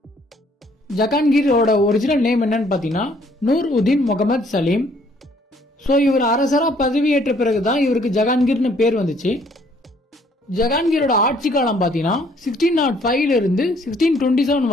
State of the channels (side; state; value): both; normal; correlation 0.63